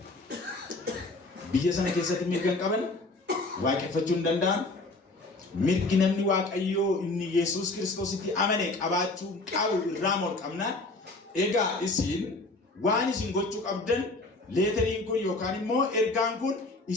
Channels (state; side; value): quieter; right; 3.1 dB